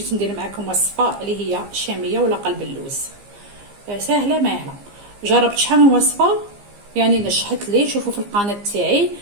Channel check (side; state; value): left; late; 15 ms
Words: ندير معكم وصفه اللي هي شاميه ولا قلب اللوز. سهله ماهله. جربت شحال من وصفه يعني نجحت لي. شوفوا في القناه تاعي.